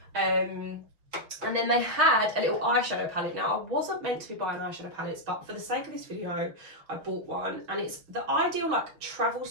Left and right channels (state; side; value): late; left; 6.1 ms